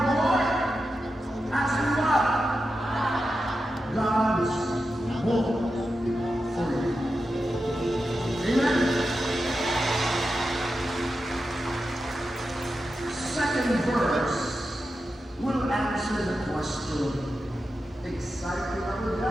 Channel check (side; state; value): both; normal; correlation 0.90